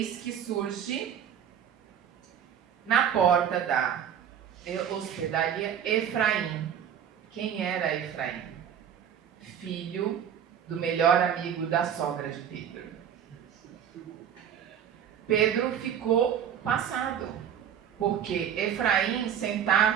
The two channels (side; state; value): left; quieter; 8.9 dB